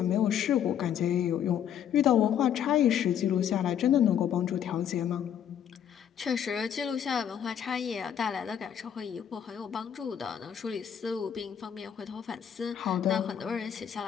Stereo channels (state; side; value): quieter; right; 9.1 dB